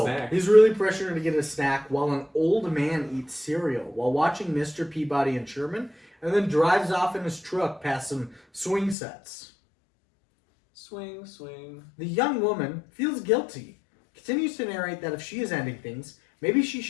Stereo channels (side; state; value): right; drops out; at 9.0 s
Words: snack. he's really pressuring her to get a snack while an old man eats cereal while watching Mr. Peabody and Sherman, and then drives off in his truck past some swing sets. Swing, swing. The young woman feels guilty, continues to narrate that if she is ending things, maybe she